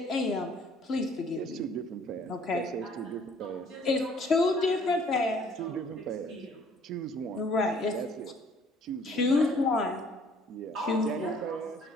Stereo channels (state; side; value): normal; both; correlation 0.58